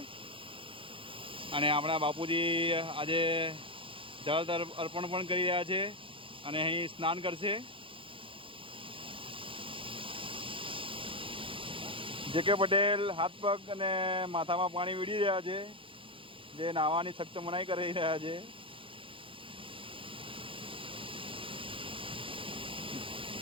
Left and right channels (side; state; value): left; late; 0.25 ms